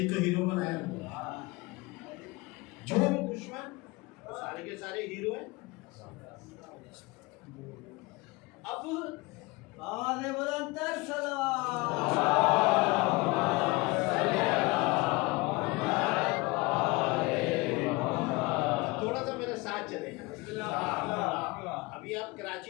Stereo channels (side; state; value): right; quieter; 23.8 dB